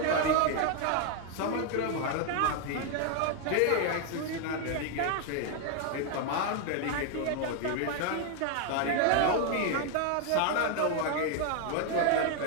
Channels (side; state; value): both; different; correlation 0.01